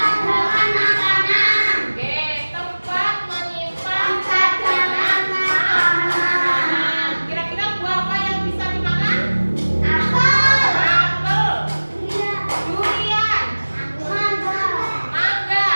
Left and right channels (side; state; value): both; inverted; correlation -1.00